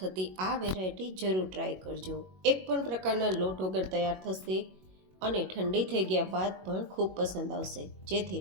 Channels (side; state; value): left; late; 21 ms